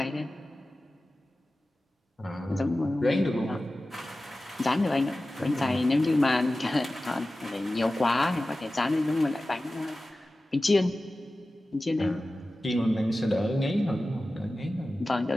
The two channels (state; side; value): normal; both; correlation 0.95